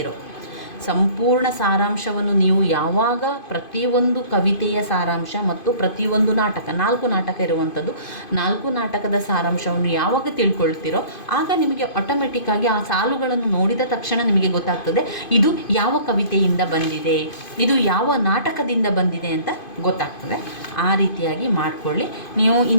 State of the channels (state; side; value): late; right; 2.5 ms